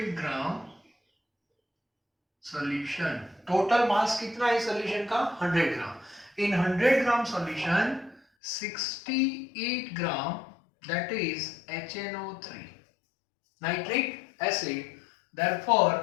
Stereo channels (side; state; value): right; drops out; at 8.2 s